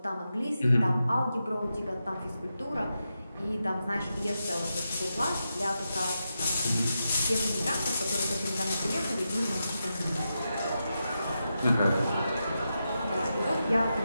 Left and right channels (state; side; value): inverted; both; correlation -0.88